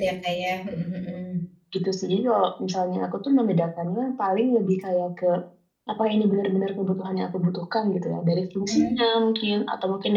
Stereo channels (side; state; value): both; identical; correlation 1.00